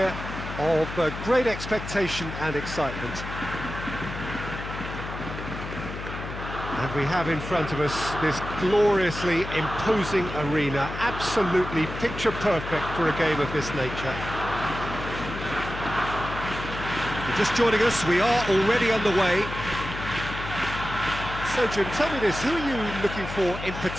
of great expectation and excitement. And we have in front of us this gloriously imposing arena, absolutely picture perfect for a game of this nature. If you're just joining us, we are already underway. So Jim, tell me this, who are you looking for in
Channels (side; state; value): left; noise; hum, 8 dB below the sound